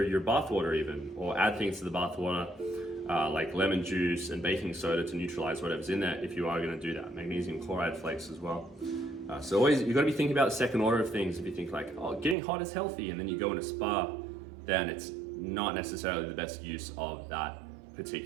your bath water even, or add things to the bath water, like lemon juice and baking soda to neutralize whatever's in there if you are gonna do that. Magnesium chloride flakes as well. So always, you've gotta be thinking about the second order of things. If you think like, oh, getting hot is healthy, and then you go in a spa, then it's not necessarily the best use of that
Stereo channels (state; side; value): drops out; left; at 12.4 s